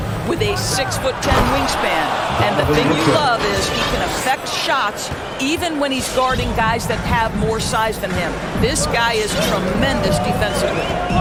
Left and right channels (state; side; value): identical; both; correlation 1.00